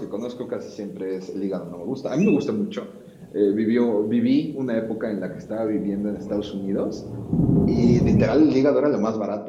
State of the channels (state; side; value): identical; both; correlation 1.00